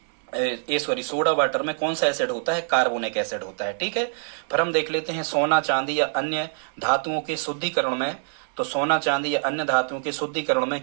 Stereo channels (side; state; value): left; silent; digital silence